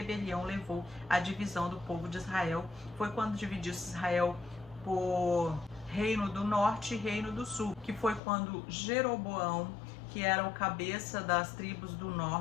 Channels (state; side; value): drops out; right; at 8.2 s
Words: levou à divisão do povo de Israel. Foi quando dividiu-se Israel por Reino do Norte e Reino do Sul, que foi quando Jeroboão, que era o cabeça das tribos do